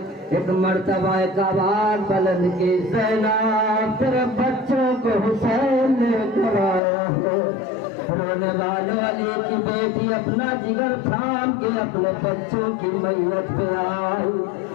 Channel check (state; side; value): drops out; right; at 6.8 s